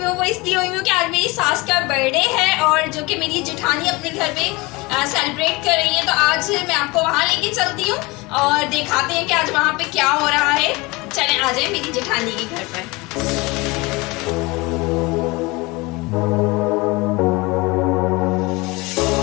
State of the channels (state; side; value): quieter; right; 24.1 dB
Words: वो इसलिए हुई हूँ कि आज मेरी सास का बर्थडे है और जो कि मेरी जेठानी अपने घर पे सेलिब्रेट कर रही है। तो आज मैं आपको वहाँ लेके चलती हूँ और दिखाते हैं कि आज वहाँ पे क्या हो रहा है। चलें आ जाए मेरी जेठानी के घर पर।